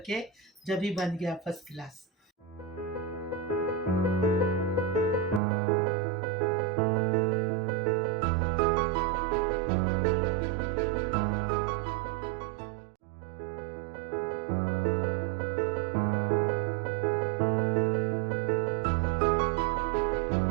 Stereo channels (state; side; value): drops out; left; at 5.4 s